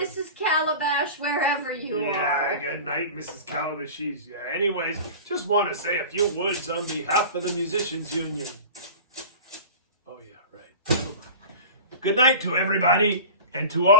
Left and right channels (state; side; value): inverted; both; correlation -0.35